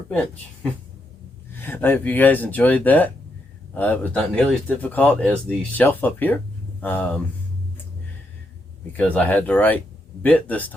I hope you guys enjoyed that. It was not nearly as difficult as the shelf up here, because I had the right bit this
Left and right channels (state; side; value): normal; both; correlation 0.80